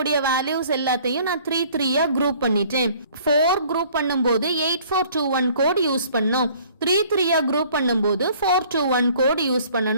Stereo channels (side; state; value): both; inverted; correlation -0.55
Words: வேல்யூஸ் எல்லாத்தையும் நான் 3 குரூப் பண்ணிட்டேன். 4 குரூப் பண்ணும்போது 8421 கோட் யூஸ் பண்ணோம். 3 குரூப் பண்ணும்போது 421 கோட் யூஸ்